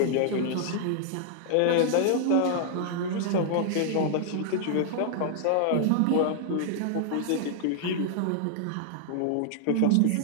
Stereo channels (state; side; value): different; both; correlation -0.01